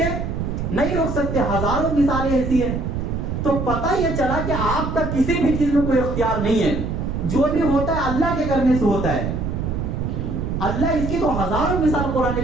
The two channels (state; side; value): noise; right; rumble, 3 dB below the sound